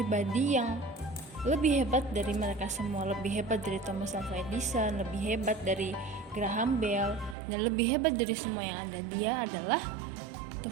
yang lebih hebat dari mereka semua, lebih hebat dari Thomas Alva Edison, lebih hebat dari Graham Bell, dan lebih hebat dari semua yang ada. Dia adalah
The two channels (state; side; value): drops out; left; at 7.4 s